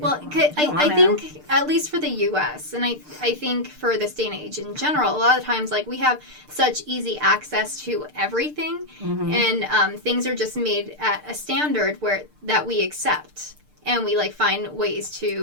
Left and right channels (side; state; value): left; late; 6.7 ms